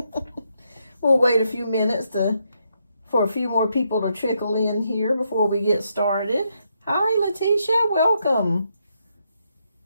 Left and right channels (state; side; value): inverted; both; correlation -0.78